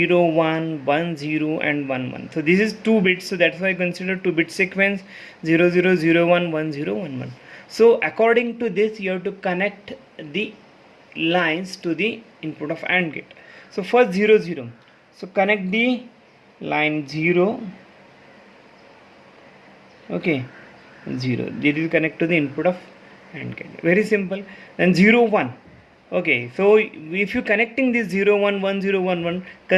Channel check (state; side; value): identical; both; correlation 1.00